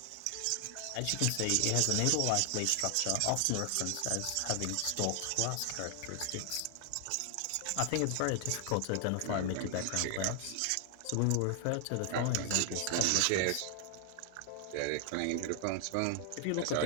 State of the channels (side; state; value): both; different; correlation 0.00